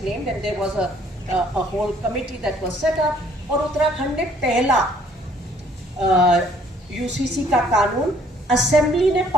and there was a whole committee that was set up और उत्तराखंड ने पहला UCC का कानून assembly ने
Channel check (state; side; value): normal; both; correlation 0.60